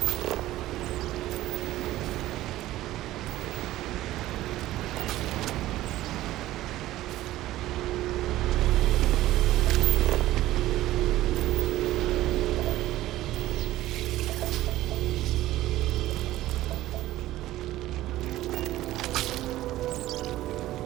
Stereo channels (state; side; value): quieter; left; 15.5 dB